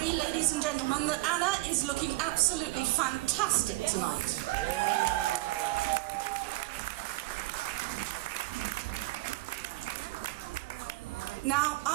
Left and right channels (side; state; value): left; quieter; 19.3 dB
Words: ladies and gentlemen, that Anna is looking absolutely fantastic tonight. Now,